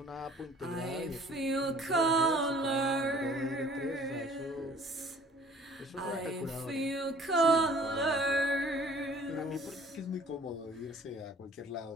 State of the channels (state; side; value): normal; both; correlation 0.52